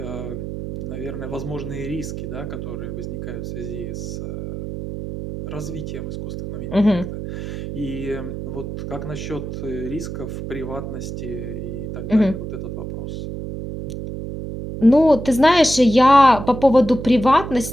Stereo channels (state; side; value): noise; right; hum, 7 dB below the sound